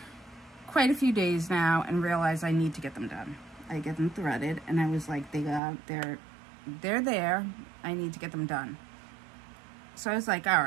quite a few days now and realized I need to get them done. I get them threaded, and I was like, they're there. I need to get them done. So I was like, all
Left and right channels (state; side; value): drops out; left; at 5.6 s